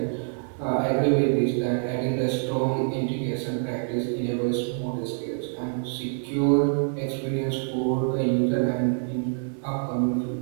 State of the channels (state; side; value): silent; left; digital silence